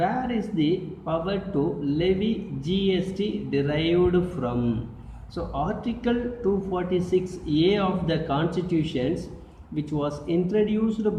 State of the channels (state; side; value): identical; both; correlation 1.00